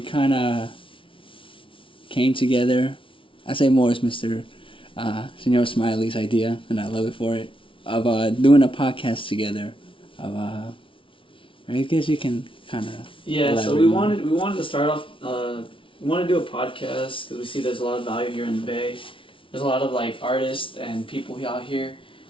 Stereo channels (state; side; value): late; right; 0.25 ms